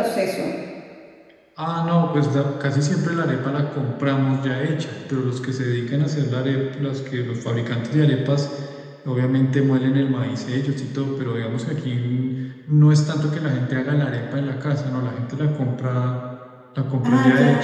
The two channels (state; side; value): identical; both; correlation 1.00